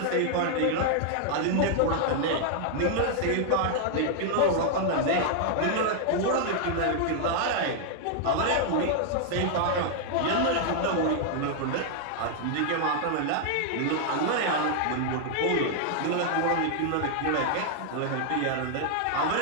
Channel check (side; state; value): both; different; correlation 0.00